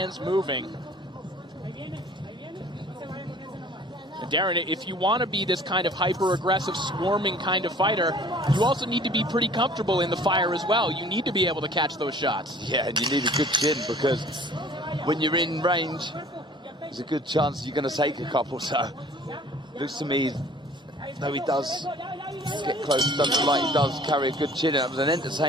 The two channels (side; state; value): both; normal; correlation 0.50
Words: moving. Darren, if you want to be this kind of hyper-aggressive, swarming kind of fighter, you also need to be pretty comfortable in the fire as well. You need to be able to catch those shots. Yeah, and you need a good chin, because when you're in range, there's a good chance you're going to take a couple. So, looks to me, though he does get close, doesn't like he does carry a good chin. It was an